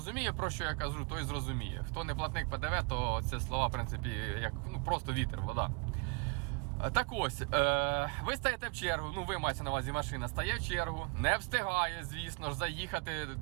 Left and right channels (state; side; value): quieter; left; 31.6 dB